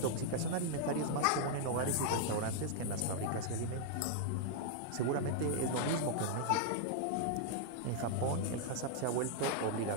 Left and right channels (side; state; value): both; different; correlation -0.01